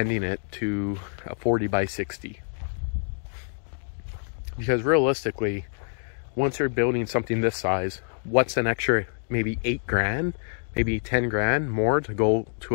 it to a 40 by 60. Because realistically, once you're building something this size, what's an extra maybe 8 grand, maybe 10 grand more to go to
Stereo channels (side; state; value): right; silent; digital silence